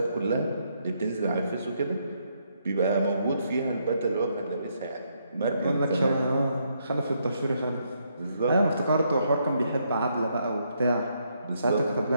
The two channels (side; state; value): both; inverted; correlation -0.75